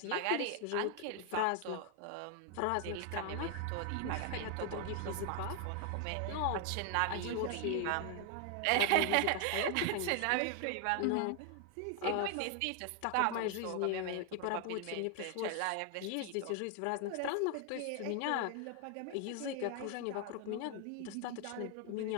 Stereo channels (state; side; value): different; both; correlation 0.00